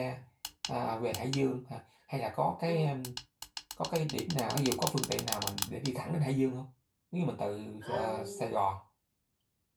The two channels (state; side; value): identical; both; correlation 1.00